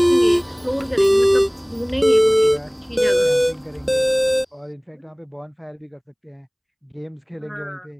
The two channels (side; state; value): both; identical; correlation 1.00